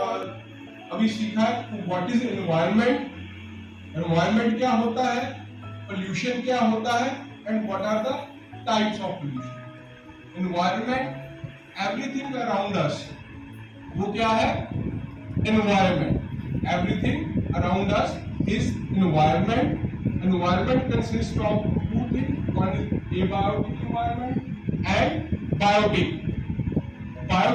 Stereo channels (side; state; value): both; identical; correlation 1.00